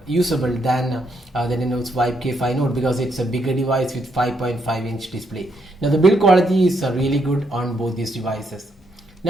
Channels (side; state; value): both; normal; correlation 0.76